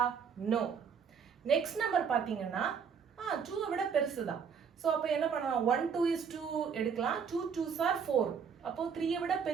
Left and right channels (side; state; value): left; quieter; 6.7 dB